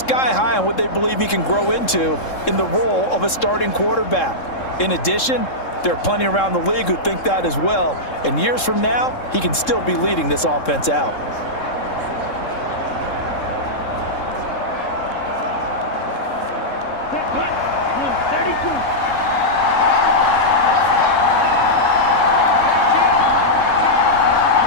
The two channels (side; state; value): right; late; 3.7 ms